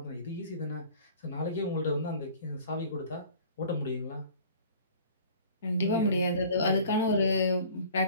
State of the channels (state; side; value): inverted; both; correlation -0.48